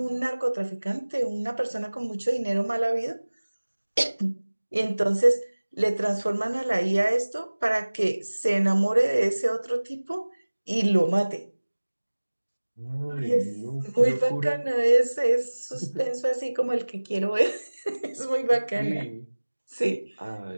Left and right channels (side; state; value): both; inverted; correlation -1.00